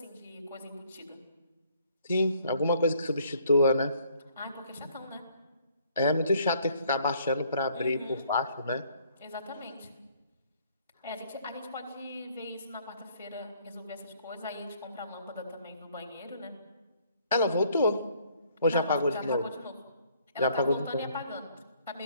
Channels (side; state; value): both; inverted; correlation -0.63